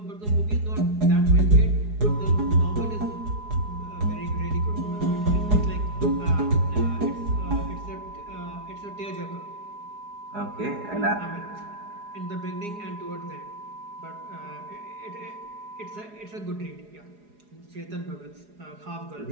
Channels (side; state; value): left; late; 4.8 ms